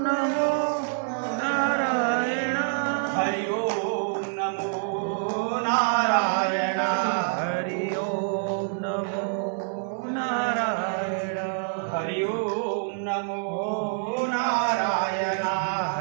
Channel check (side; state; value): left; silent; 61 dB below the other